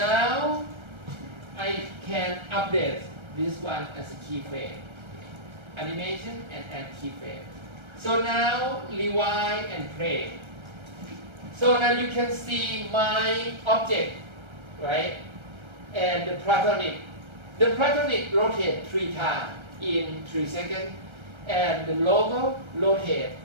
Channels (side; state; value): left; late; 1.3 ms